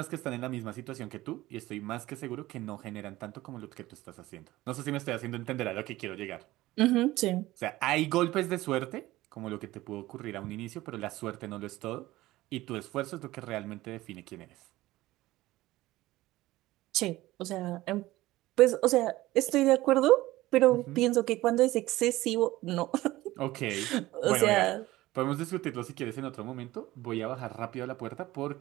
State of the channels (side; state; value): left; quieter; 17.4 dB